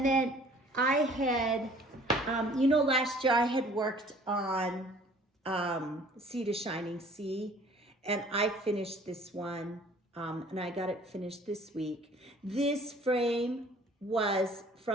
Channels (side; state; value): both; normal; correlation 0.52